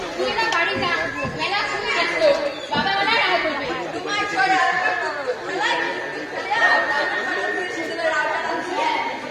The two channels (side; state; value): both; identical; correlation 1.00